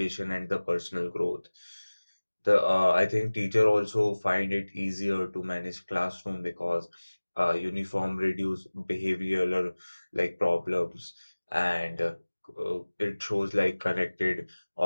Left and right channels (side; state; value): both; inverted; correlation -1.00